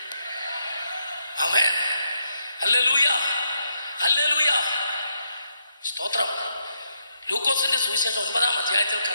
ആമേൻ ഹല്ലേലൂയ ഹല്ലേലൂയ സ്തോത്രം. ലൂക്കോസിന്റെ സുവിശേഷം 9-ാം അധ്യായത്തിൽ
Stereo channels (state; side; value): inverted; both; correlation -0.78